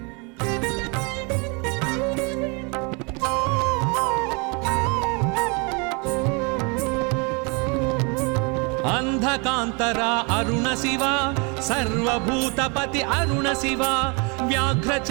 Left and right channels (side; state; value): left; quieter; 32.0 dB